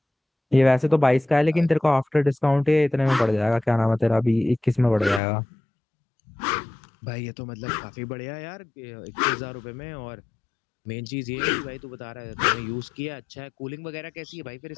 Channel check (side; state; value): right; drops out; at 5.2 s